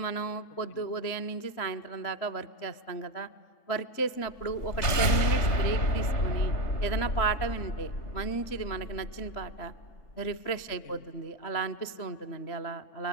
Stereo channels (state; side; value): late; right; 3.3 ms